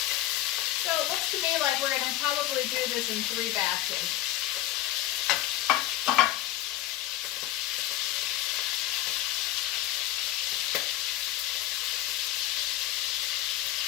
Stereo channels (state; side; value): quieter; right; 14.8 dB